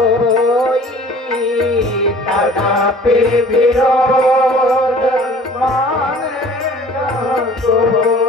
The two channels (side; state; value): both; normal; correlation 0.49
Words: तदापि विरोध मान जहाँ